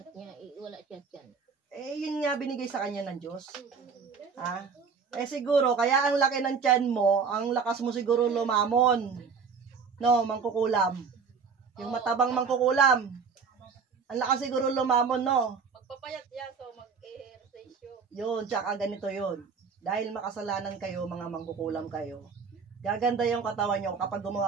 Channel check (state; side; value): quieter; left; 5.6 dB